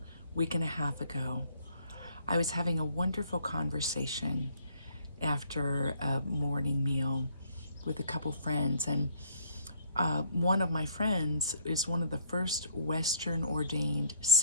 week and a half ago, I was having a wonderful conversation after a morning meal with a couple friends. And one of my friends is one of the first Western ordained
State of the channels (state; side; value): inverted; both; correlation -0.62